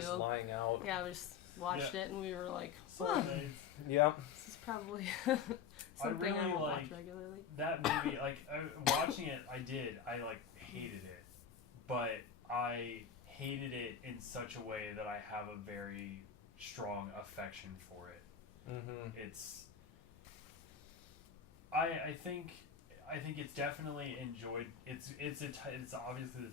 lying out. Yeah, we just watched it, and we were like, Soulmates. Yeah. this is probably I really watch like regularly. that movie. Like watching it, I did. I hated it, but I hated it in such a way that I have a very strong affection for it. Mm-hmm. It's. I think it's definitely enjoyed. It's obviously the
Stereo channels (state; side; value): quieter; right; 7.0 dB